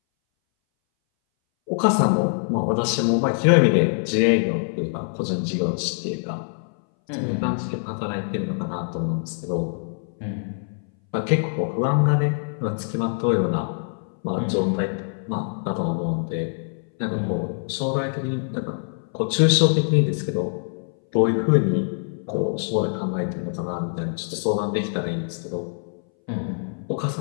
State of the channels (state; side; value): silent; right; 60 dB below the other